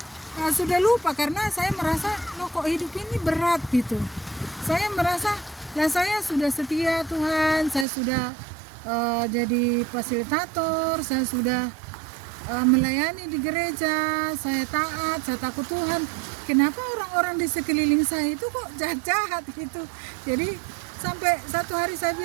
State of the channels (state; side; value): drops out; left; at 7.9 s